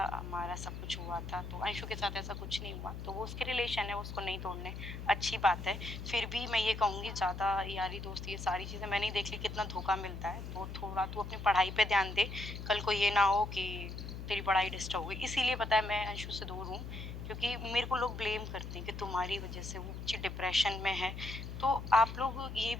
हमारा सब कुछ हुआ था, तो अंशु के साथ ऐसा कुछ नहीं हुआ। तो वो उसके रिलेशन है, उसको नहीं तोड़ने, अच्छी बात है। फिर भी मैं ये कहूँगी, ज़्यादा यारी दोस्ती ये सारी चीज़ें मैंने ही देख ली कितना धोखा मिलता है। तो थोड़ा तू अपनी पढ़ाई पे ध्यान दे, कल को ये ना हो कि तेरी पढ़ाई डिस्टर्ब हुई। इसीलिए पता है मैं अंशु से दूर हूँ, क्योंकि मेरे को लोग ब्लेम करते हैं कि तुम्हारी वजह से वो बच्ची डिप्रेशन में है। तो आप लोग ये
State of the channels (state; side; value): noise; left; hum, 8 dB below the sound